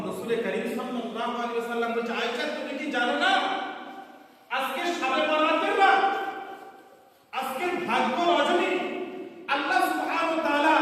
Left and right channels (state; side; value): identical; both; correlation 1.00